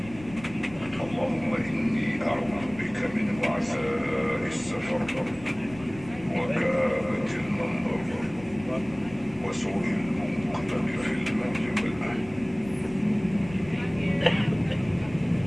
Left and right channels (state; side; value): noise; left; rumble, 17 dB below the sound